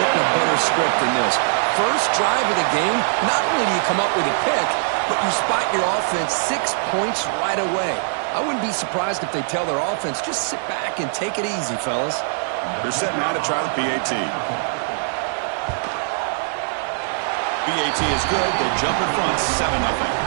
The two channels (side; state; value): left; silent; digital silence